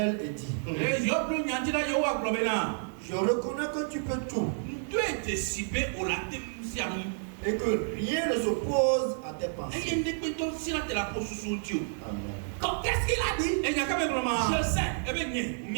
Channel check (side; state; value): left; silent; 58 dB below the other